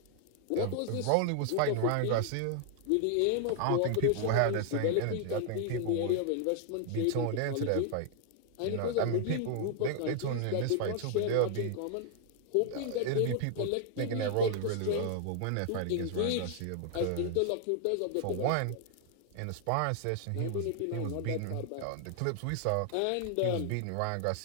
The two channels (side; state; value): both; different; correlation 0.00